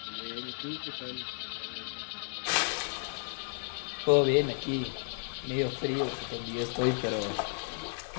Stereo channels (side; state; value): right; silent; 56 dB below the other